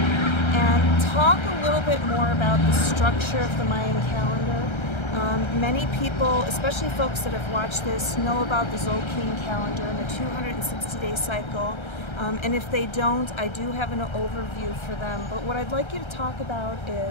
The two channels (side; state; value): right; late; 1.3 ms